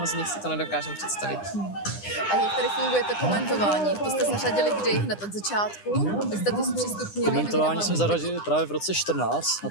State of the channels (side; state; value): right; late; 9.9 ms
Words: z nich si to nedokážeme představit. A jak tady funguje to komentování? To jste zařadili kdy? Hned od začátku? Vy jste to zpřístupnili? Komentování jsme zařadili právě v roce 14 na